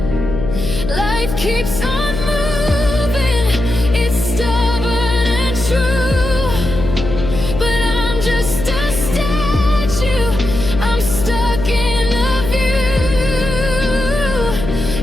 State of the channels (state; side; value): noise; left; hum, 5 dB below the sound